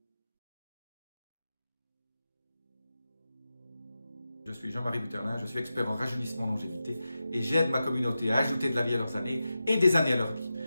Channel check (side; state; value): both; inverted; correlation -0.92